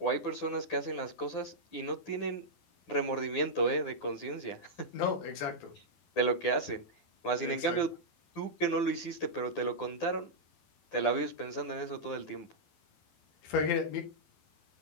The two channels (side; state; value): right; late; 12 ms